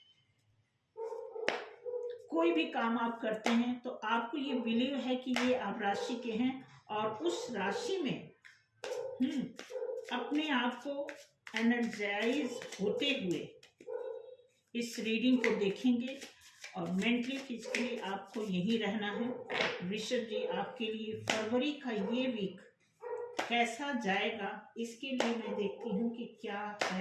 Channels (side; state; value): both; identical; correlation 1.00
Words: कोई भी काम आप करते हैं, तो आपको ये बिलीव है कि ये आप राशि के हैं और उस राशि में अपने आप को एनर्जाइज होते हुए इस रीडिंग को देखेंगे। और मेंटली फिजिकली आपको यही रहना है। वृषभ जी, आपके लिए फरवरी का ये वीक कैसा जाएगा, इसके लिए मैं देखती हूँ कि क्या